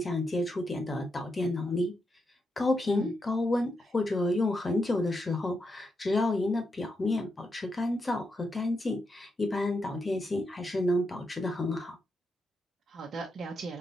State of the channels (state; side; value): normal; both; correlation 0.84